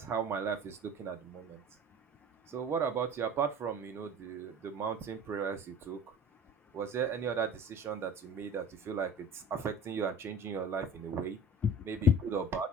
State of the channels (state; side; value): normal; both; correlation 0.42